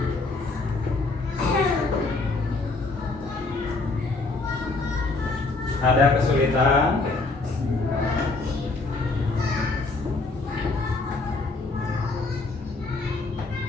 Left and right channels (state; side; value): quieter; right; 3.5 dB